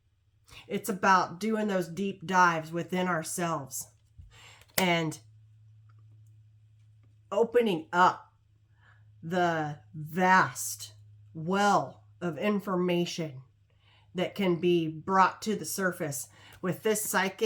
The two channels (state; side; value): identical; both; correlation 1.00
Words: It's about doing those deep dives within ourselves and opening up the vast well of information that can be brought to the surface with this